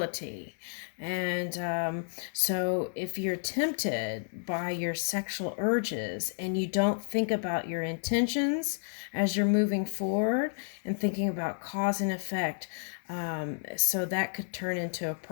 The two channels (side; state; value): right; silent; digital silence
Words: And so if you're tempted by your sexual urges and you don't think about your intentions as you're moving forward and thinking about cause and effect, so that could turn into a